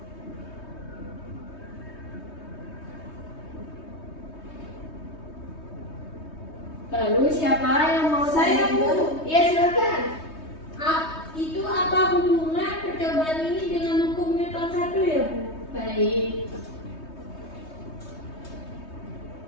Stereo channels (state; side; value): late; right; 3.2 ms